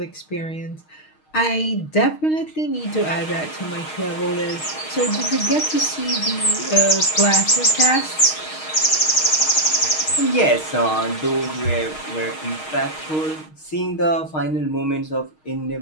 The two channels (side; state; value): right; late; 6.4 ms